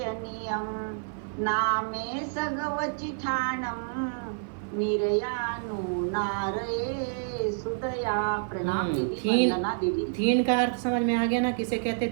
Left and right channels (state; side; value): silent; left; 55 dB below the other